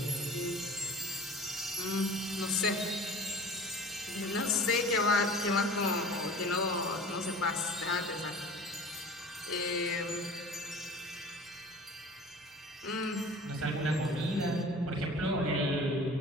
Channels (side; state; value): both; normal; correlation 0.42